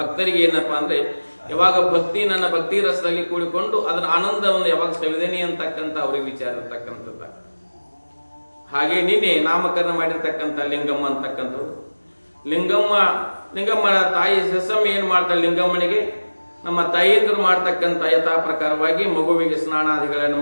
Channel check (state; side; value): inverted; both; correlation -1.00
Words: ಏನಪ್ಪಾ ಅಂದ್ರೆ ಯಾವಾಗ ನನ್ನ ಭಕ್ತಿ ರಸದಲ್ಲಿ ಕೂಡಿಕೊಂಡು ಅದರ ಆನಂದವನ್ನು ಯಾವಾಗ ಸವಿದೇನಿ ಅಂತಕ್ಕಂಥ ಅವ್ರಿಗೆ ವಿಚಾರ ಇರ್ತಕ್ಕಂಥದ್ದು. ಹಾಗೆ ನಿನ್ನೆ ನಾಮಕರಣ ಮಾಡಿರ್ತಕ್ಕಂಥ ಲಿಂಗಮ್ಮ ಅಂತಕ್ಕಂಥದ್ದು. ಲಿಂಗಮ್ಮನ ತಾಯಿ ಸಸಮ್ಮ ಏನ್ ಮಾಡ್ತಾಳೆ, ಲಿಂಗಮ್ಮನಿಗೆ ನಮ್ಮ ತಾಯಿಯಂದರು ಮಾಡ್ತಕ್ಕಂಥ ಯಥಾ ಪ್ರಕಾರವಾಗಿ ಮಗುವಿಗೆ ಸ್ನಾನಾದಿಗಳನ್ನು